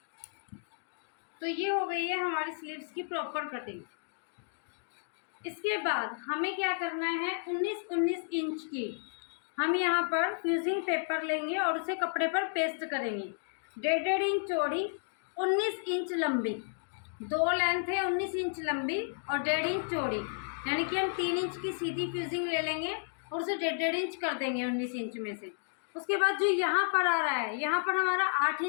तो ये हो गई है हमारी स्लीव्स की प्रॉपर कटिंग। इसके बाद हमें क्या करना है, 19 इंच की हम यहाँ पर फ्यूजिंग पेपर लेंगे और उसे कपड़े पर पेस्ट करेंगे। 1.5 इंच चौड़ी, 19 इंच लंबी, दो लेंथ है 19 इंच लंबी और 1.5 इंच चौड़ी, यानी कि हम 3 इंच की सीधी फ्यूजिंग ले लेंगे और उसे 1.5 इंच कर देंगे 19 इंच में से। उसके बाद जो यहाँ पर आ रहा है, यहाँ पर हमारा 8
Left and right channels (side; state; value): right; silent; digital silence